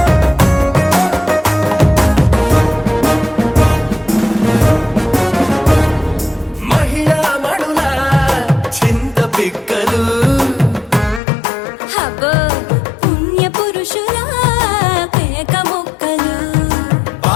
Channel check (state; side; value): drops out; right; at 11.2 s